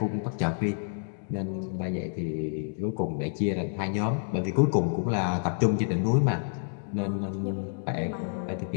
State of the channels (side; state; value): right; silent; digital silence